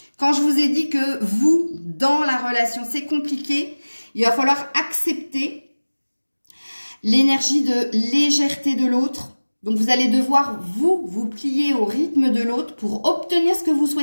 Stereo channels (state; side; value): inverted; both; correlation -1.00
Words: Quand je vous ai dit que vous, dans la relation, c'est compliqué, il va falloir accepter l'énergie de légèreté de l'autre. Donc, vous allez devoir, vous plier au rythme de l'autre pour obtenir ce que vous